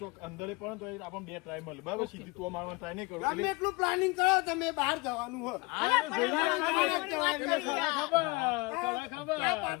અંદરે પણ તો આપણને બે ટ્રાય મળે બરાબર. સીધી તું મારવાનું ટ્રાય નહીં કરો ગમે એટલે એટલું પ્લાનિંગ કરો તમે, બહાર જવાનું હોય.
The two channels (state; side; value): quieter; right; 24.9 dB